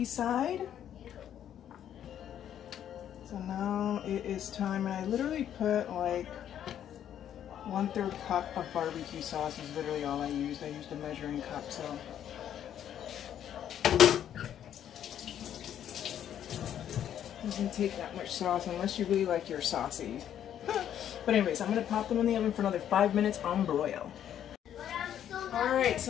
side. So now it is time, and I literally put like 1/3 cup of barbecue sauce is literally all I used. I used a measuring cup, so. Doesn't take that much sauce unless you really like your saucy. But anyways, I'm gonna pop them in the oven for another 5 minutes on broil. Alright,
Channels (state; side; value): quieter; right; 10.1 dB